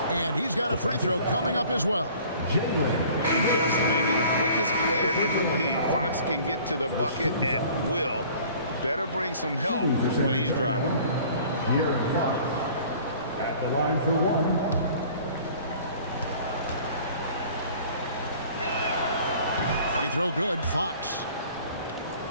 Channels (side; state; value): both; inverted; correlation -0.50